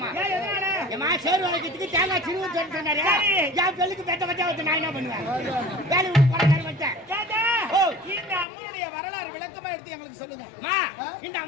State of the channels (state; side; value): drops out; right; at 8.5 s